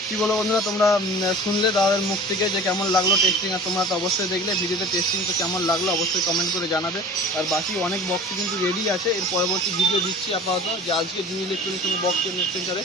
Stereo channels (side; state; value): both; normal; correlation 0.41